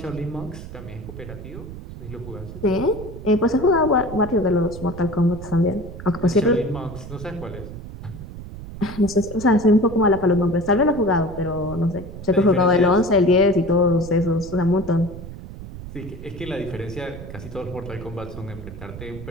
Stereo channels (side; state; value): right; noise; rumble, 12 dB below the sound